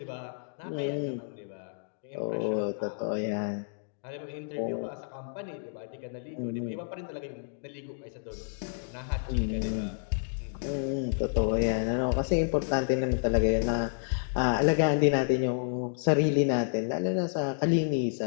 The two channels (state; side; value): silent; right; digital silence